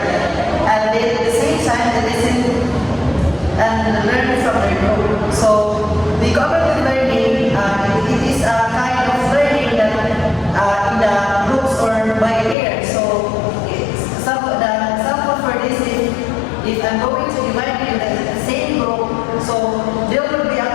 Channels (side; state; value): right; drops out; at 12.6 s